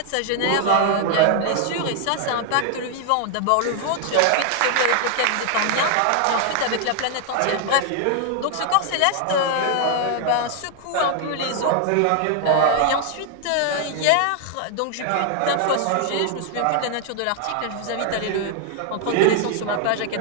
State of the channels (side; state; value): both; different; correlation 0.00